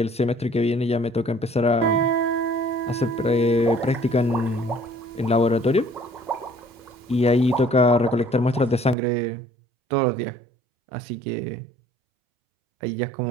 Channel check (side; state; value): left; drops out; at 9.0 s